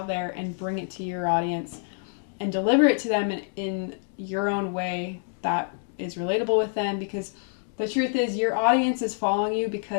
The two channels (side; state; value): right; silent; 56 dB below the other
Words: there and bring it to your audience and deliver it to them in your own way that is relatable with them, because The truth is, your audience is following you